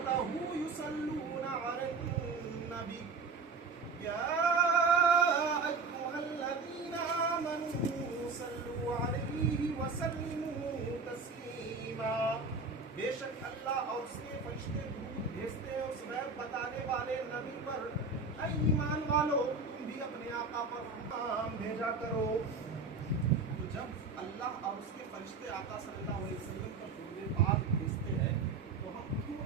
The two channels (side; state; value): left; quieter; 4.4 dB